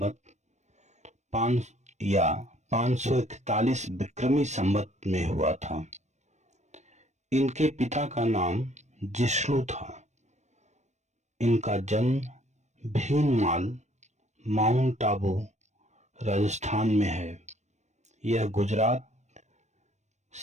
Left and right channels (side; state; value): left; late; 0.34 ms